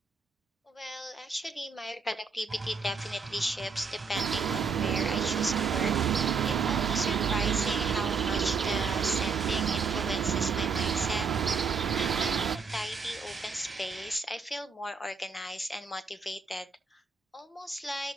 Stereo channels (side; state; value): left; quieter; 5.0 dB